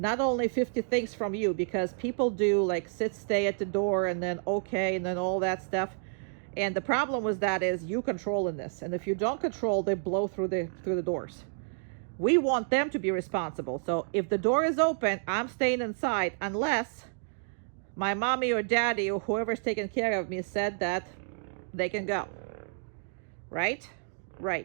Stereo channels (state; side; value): silent; left; digital silence